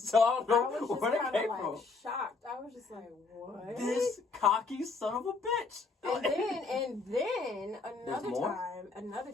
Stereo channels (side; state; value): right; quieter; 4.1 dB